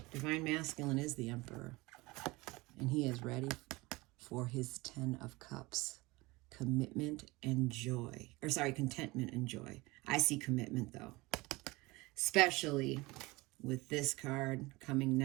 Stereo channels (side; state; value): left; quieter; 22.4 dB